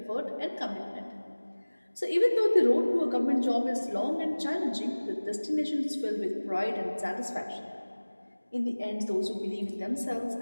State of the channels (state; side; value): inverted; both; correlation -1.00